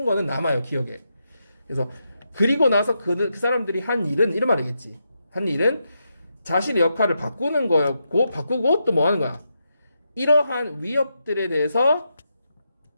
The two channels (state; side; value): inverted; both; correlation -0.84